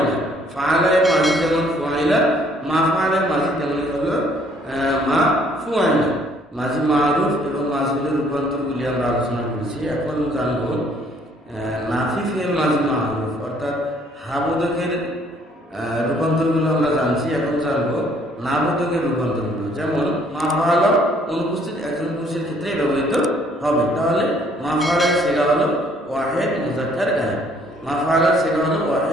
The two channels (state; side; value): normal; both; correlation 0.62